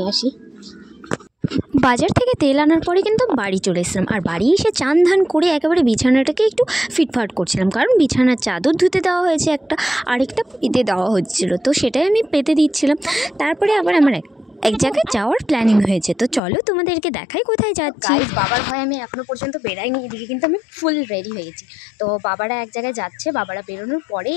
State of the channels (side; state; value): right; drops out; at 16.4 s